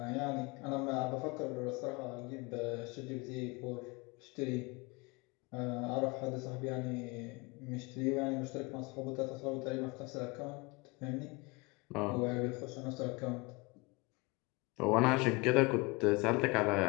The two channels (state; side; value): quieter; right; 25.9 dB